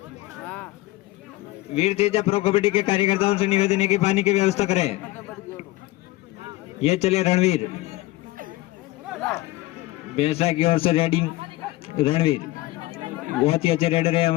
वीर तेजा प्रो कबड्डी के कार्यकर्ताओं से निवेदन है कि पानी की व्यवस्था करें। ये चले रणवीर, भैंसड़ा की ओर से रेडिंग रणवीर, बहुत ही अच्छे रेडर है,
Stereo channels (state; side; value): quieter; right; 18.4 dB